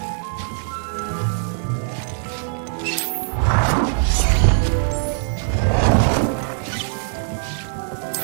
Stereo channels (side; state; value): left; silent; 65 dB below the other